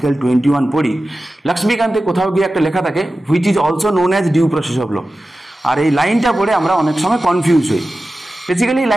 21 পড়ি, লক্ষ্মীকান্তে কোথাও গিয়ে একটা লেখা থাকে, which is also known as due process of law. আর এই লাইনটা পড়ে আমরা অনেক সময় কনফিউজ হই। বেসিক্যালি এই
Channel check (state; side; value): normal; both; correlation 0.94